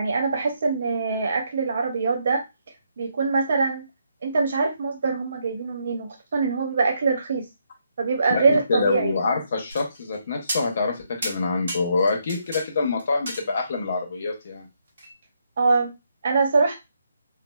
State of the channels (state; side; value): inverted; both; correlation -0.77